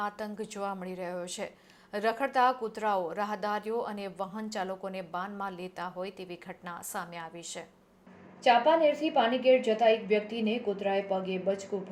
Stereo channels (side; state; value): both; identical; correlation 1.00